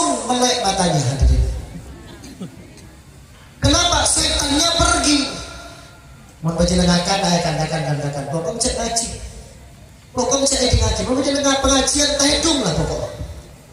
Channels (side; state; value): both; identical; correlation 1.00